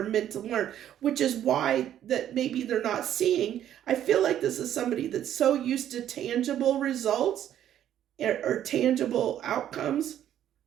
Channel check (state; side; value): quieter; left; 10.9 dB